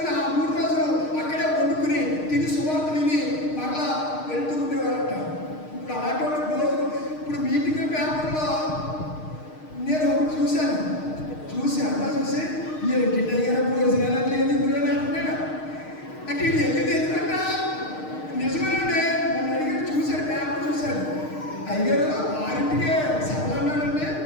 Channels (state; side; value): late; right; 6.5 ms